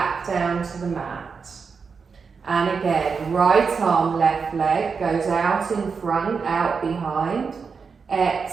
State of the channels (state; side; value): quieter; left; 5.4 dB